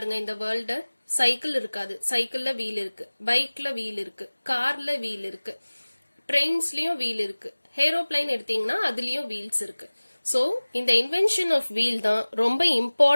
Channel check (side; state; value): both; inverted; correlation -1.00